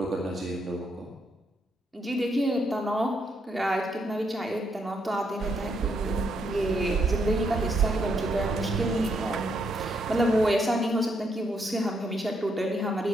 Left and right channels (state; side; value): normal; both; correlation 0.77